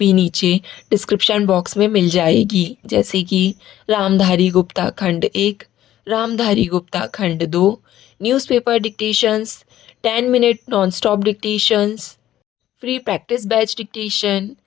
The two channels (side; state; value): right; quieter; 12.8 dB